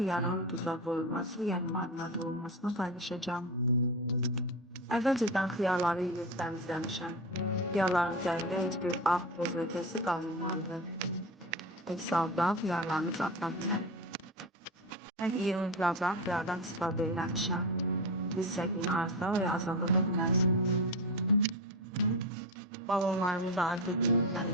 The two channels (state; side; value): normal; both; correlation 0.22